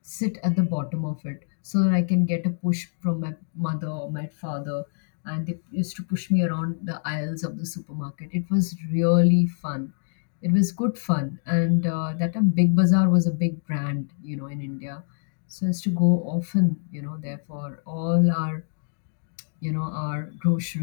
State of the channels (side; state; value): right; silent; digital silence